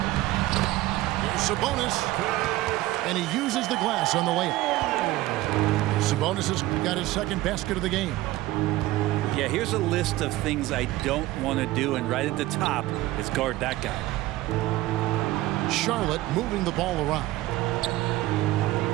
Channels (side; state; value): left; quieter; 17.1 dB